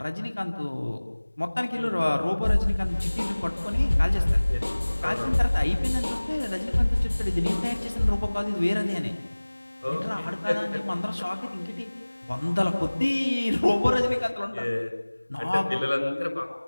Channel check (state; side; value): inverted; both; correlation -1.00